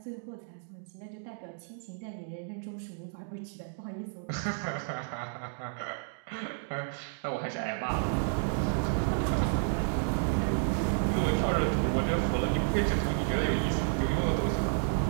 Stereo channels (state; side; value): silent; left; digital silence